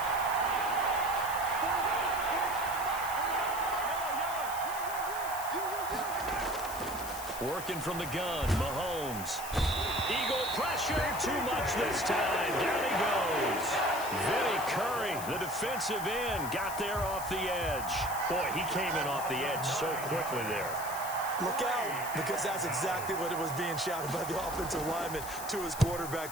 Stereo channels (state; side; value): noise; left; hiss, 10 dB below the sound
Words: Working from the gun, Mahomes. Eagle pressure, too much this time. Down he goes. Vinny Curry, the defensive end, got there off the edge. Boy, he came in off the edge so quickly there. Look out, because that's exactly what it was being shouted by the offensive lineman to his